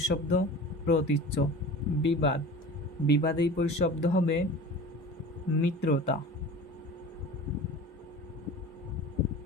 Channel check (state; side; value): normal; both; correlation 0.38